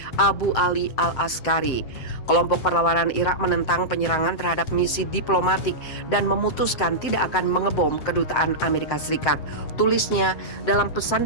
Abu Ali al-Askari. Kelompok perlawanan Irak menentang penyerangan terhadap misi diplomatik dan memutuskan tidak akan mengebom kedutaan Amerika Serikat. Tulisnya dalam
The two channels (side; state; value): right; late; 7.6 ms